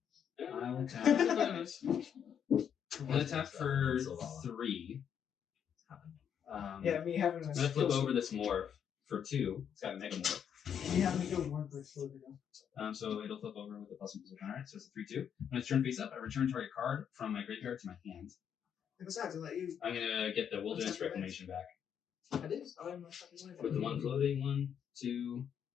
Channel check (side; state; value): right; quieter; 8.3 dB